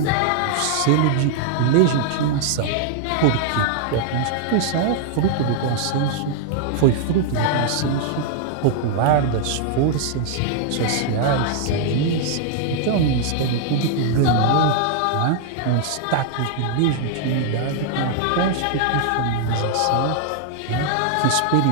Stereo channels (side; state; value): both; different; correlation 0.00